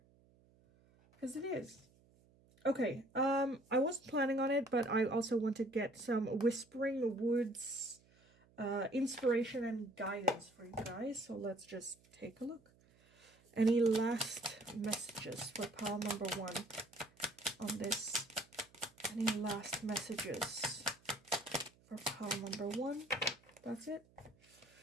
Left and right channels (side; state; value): right; noise; hum, 30 dB below the sound